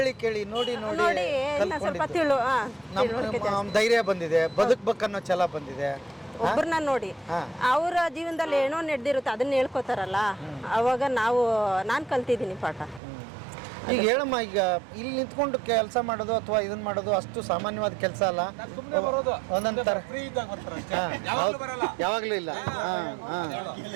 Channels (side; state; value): left; drops out; at 13.0 s